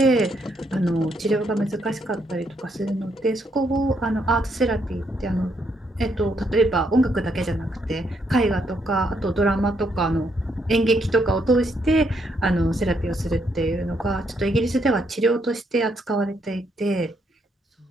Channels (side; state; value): both; normal; correlation 0.75